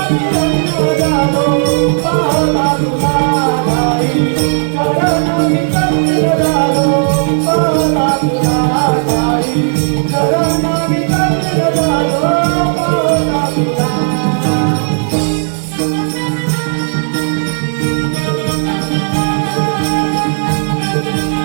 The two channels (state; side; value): silent; left; digital silence